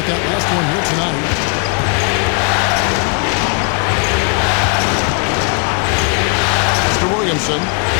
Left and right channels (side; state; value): right; quieter; 36.2 dB